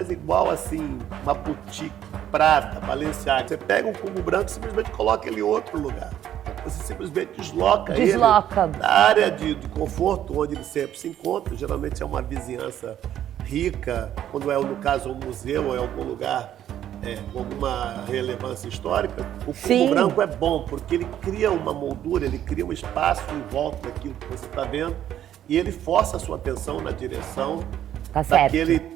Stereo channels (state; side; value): quieter; left; 11.1 dB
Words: igual assim, uma boutique, Prada, Balenciaga. Você pega um cubo branco e simplesmente coloca ele em outro lugar. Você simplesmente desloca ele da área de conforto onde ele sempre se encontra. Geralmente é uma vizinhança rica, quando é, no caso, um museu ou é algum lugar com alguma relevância histórica. O cubo branco é bom, porque ele cria uma moldura, ele cria um espaço em volta daquilo que você está vendo e ele força a sua atenção na direção daquele